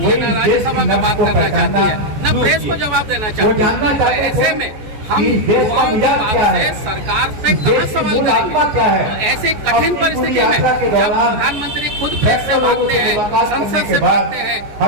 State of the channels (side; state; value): left; late; 14 ms